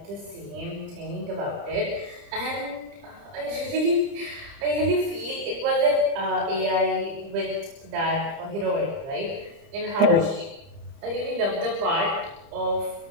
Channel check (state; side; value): late; left; 30 ms